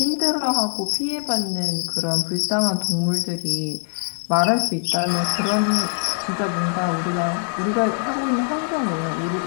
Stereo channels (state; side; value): silent; right; 64 dB below the other